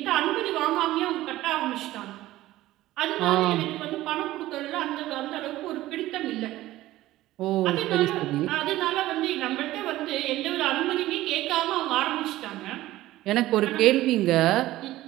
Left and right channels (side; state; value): left; quieter; 16.0 dB